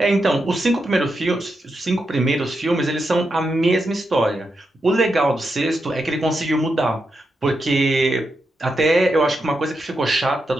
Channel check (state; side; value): normal; both; correlation 0.86